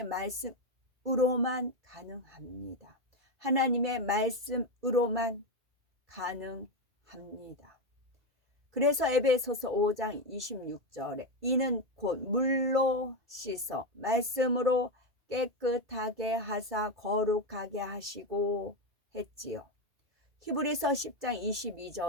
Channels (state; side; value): late; left; 2.5 ms